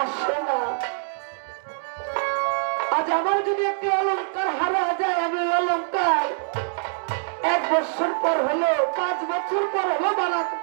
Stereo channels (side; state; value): left; silent; 62 dB below the other